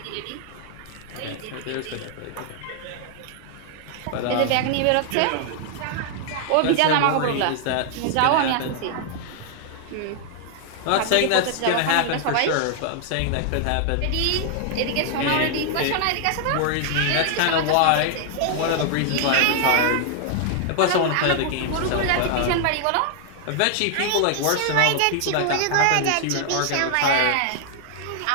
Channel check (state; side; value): different; both; correlation 0.00